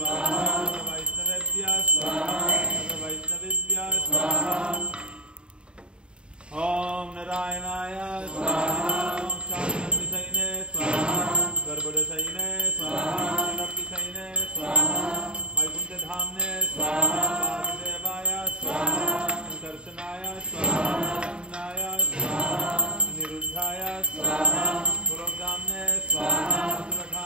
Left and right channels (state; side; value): late; left; 0.053 ms